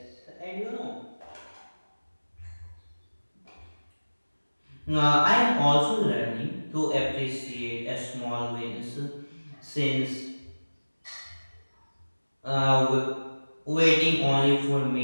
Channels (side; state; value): both; inverted; correlation -1.00